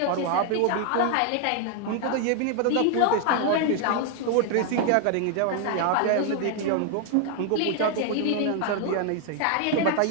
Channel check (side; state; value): both; different; correlation 0.00